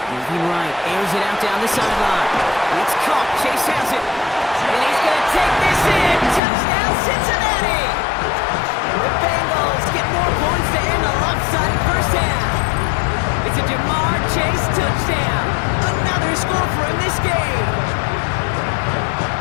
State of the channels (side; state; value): right; drops out; at 6.4 s